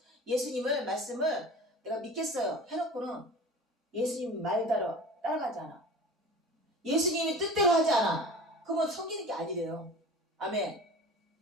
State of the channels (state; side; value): normal; both; correlation 0.38